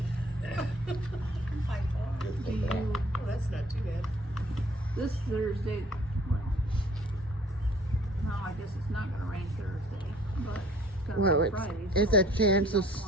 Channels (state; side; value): normal; both; correlation 0.55